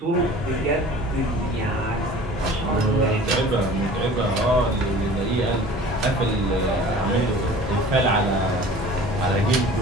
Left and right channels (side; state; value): both; normal; correlation 0.44